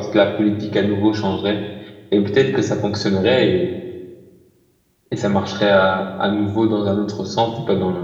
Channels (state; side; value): identical; both; correlation 1.00